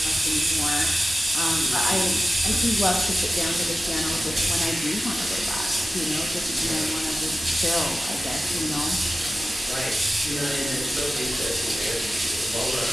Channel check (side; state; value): both; normal; correlation 0.94